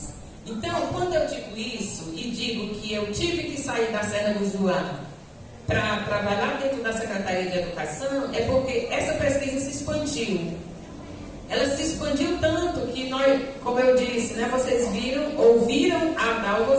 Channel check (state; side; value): identical; both; correlation 1.00